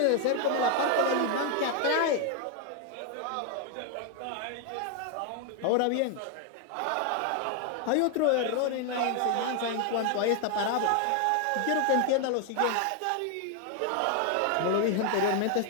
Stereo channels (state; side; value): different; both; correlation 0.00